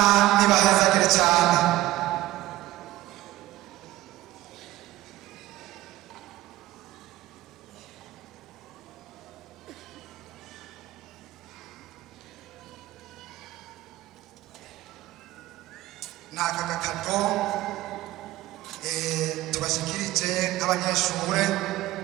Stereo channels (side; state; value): left; quieter; 16.4 dB